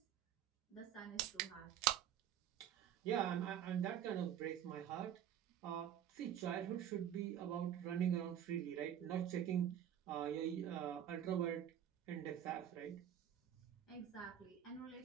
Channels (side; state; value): left; quieter; 10.2 dB